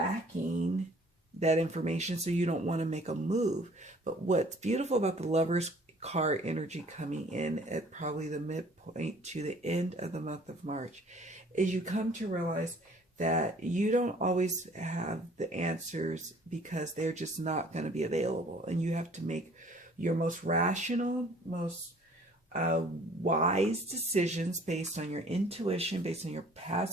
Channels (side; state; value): both; normal; correlation 0.54